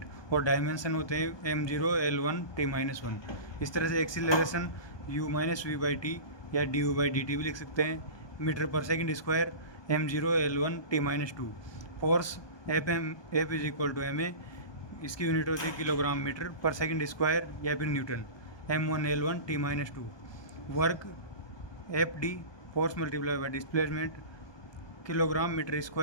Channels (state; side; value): late; right; 1.2 ms